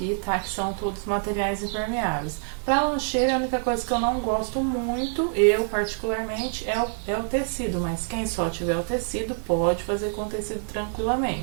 tá? Que são todos materiais impermeáveis. Para lancheira, a única coisa que eu não gosto muito, eu particularmente, é o tecido, mas quem só tiver o tecido pode fazer com tecido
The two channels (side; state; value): left; silent; 61 dB below the other